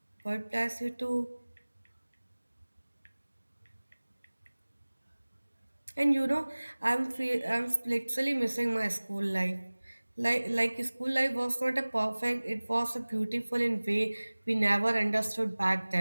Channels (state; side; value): inverted; both; correlation -1.00